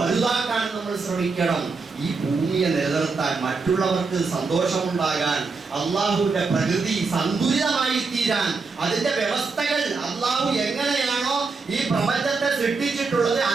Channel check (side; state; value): left; quieter; 4.3 dB